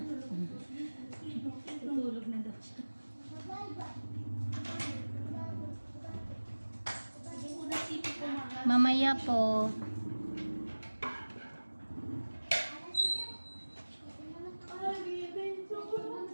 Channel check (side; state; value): both; inverted; correlation -1.00